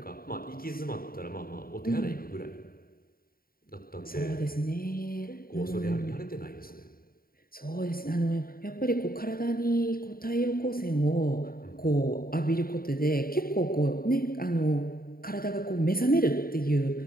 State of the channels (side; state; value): right; late; 0.43 ms